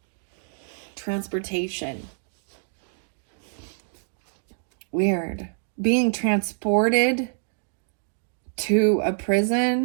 Transportation. Weird. Being transported to a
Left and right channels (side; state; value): left; silent; digital silence